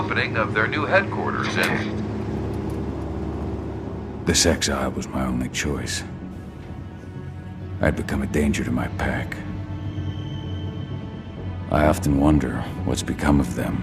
of their new headquarters in... This exile was my only choice. I'd become a danger to my pack. I often wonder what's become of them.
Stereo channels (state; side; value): identical; both; correlation 1.00